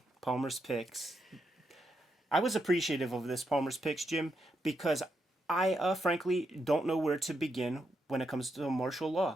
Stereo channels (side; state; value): both; normal; correlation 0.82